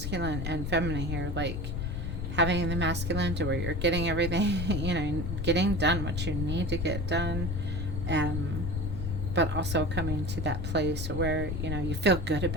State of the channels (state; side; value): noise; left; rumble, 3 dB below the sound